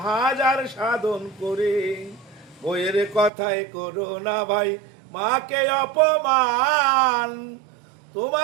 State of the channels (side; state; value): left; drops out; at 3.3 s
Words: হাজার সাধন করে। বইয়ের কথায় করো না ভাই মাকে অপমান,